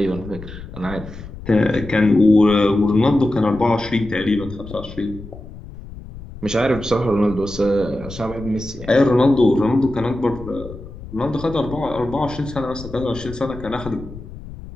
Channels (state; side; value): noise; left; rumble, 14 dB below the sound